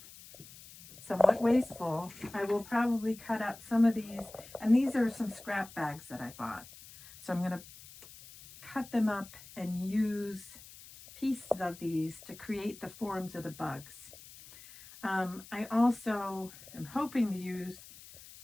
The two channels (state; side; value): noise; left; hiss, 18 dB below the sound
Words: wasteful, I will probably cut up some of these. And these are some scrap bags that I bought. So I'm going to cut them up and use pieces of these to create the forms of the bugs. I also am hoping to use